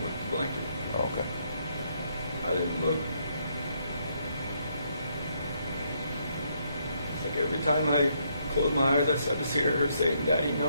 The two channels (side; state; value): both; inverted; correlation -0.74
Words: With the blanket. Oh, okay. I didn't look. It's like every time I closed my eyes, I just hear her saying, "Daddy,